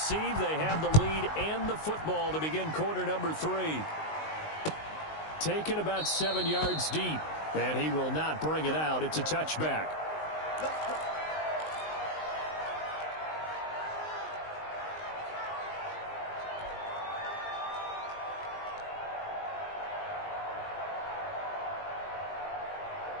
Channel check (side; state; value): right; late; 19 ms